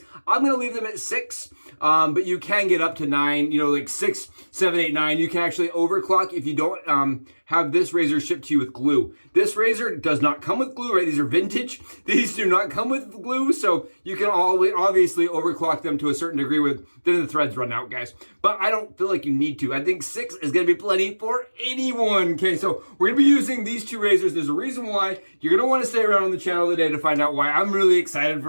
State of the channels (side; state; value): both; inverted; correlation -1.00